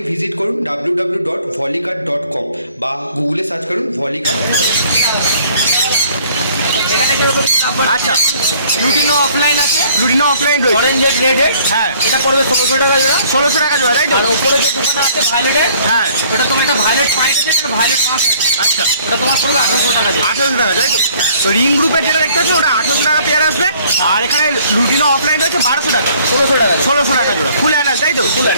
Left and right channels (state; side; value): inverted; both; correlation -0.58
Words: ভিজিট করুন www.volicart.com বা গুগলে সার্চ করুন volicart.com। এখানে যেরকম আচ্ছা, লুটিনো অফলাইন আছে, লুটিনো অফলাইন রয়েছে। অরেঞ্জেড রেডেড। হ্যাঁ, এটা পড়বে 1600 টাকা জোড়া। 1600 টাকা জোড়া, তাই তো? আর উপরে যে দোকানে আছে ভায়োলেটের, হ্যাঁ, ওটা তোমার একটা ভায়োলেট পাইট আছে, একটা ভায়োলেট পাঁচ আছে। আচ্ছা, ওটা তোমার পড়বে 1800 টাকা জোড়া। 1800 টাকা, তাই তো? তো রিং গ্রুপের যেটা দেখতে পাচ্ছেন ওটা 1800 টাকা পেয়ার আসবে। আর এখানে লুটিনো অফলাইন রয়েছে 1200 টাকা। 1600 টাকা। 1600 টাকা জোড়া। ফুল অ্যাডাল্ট, তাই তো? Full